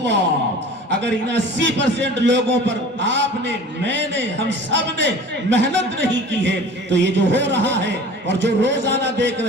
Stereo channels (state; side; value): normal; both; correlation 0.42